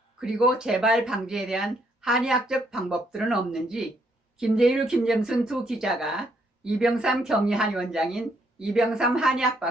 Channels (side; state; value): both; normal; correlation 0.72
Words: 그리고 재발 방지에 대한 한의학적 방법들은 없는지 김재율, 김정순 두 기자가 이병삼 경희한의원장인 이병삼 한의학